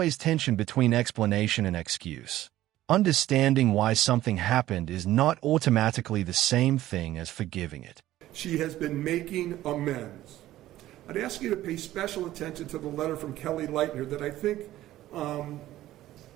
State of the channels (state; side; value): quieter; left; 14.6 dB